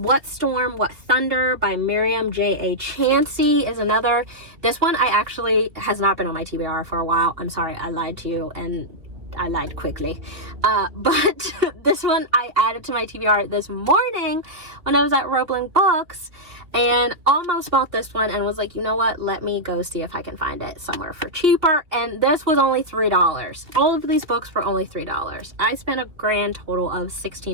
Storm, What Thunder by Miriam J.A. Chansey is another. This one has not been on my TBR for a while. I'm sorry, I lied to you, and I lied quickly. But this one I added to my TBR this morning when I was at Roebling Books, and almost bought this one and was like, you know what, let me go see if I can find it somewhere for cheaper. And this was only $3. All of these books were only $3. I spent a grand total of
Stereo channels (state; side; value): late; left; 2.5 ms